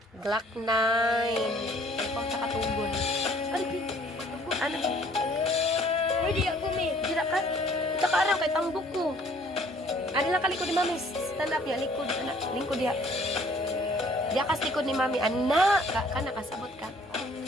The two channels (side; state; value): both; normal; correlation 0.58